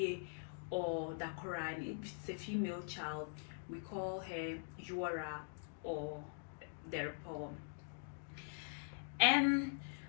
or Dakora. And if it's a female child, we call her Yuara or Derpo. And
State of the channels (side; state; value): right; silent; digital silence